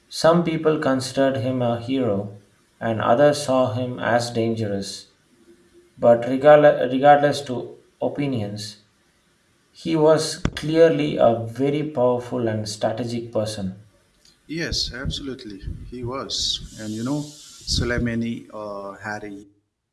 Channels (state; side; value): identical; both; correlation 1.00